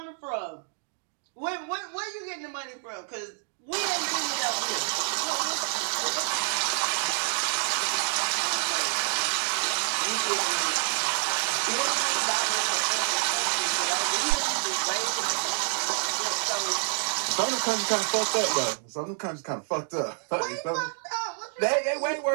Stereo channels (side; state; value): left; silent; 59 dB below the other